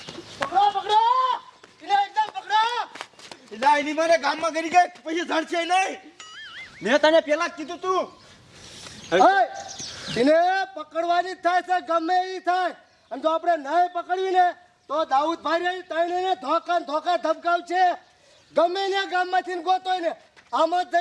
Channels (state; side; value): identical; both; correlation 1.00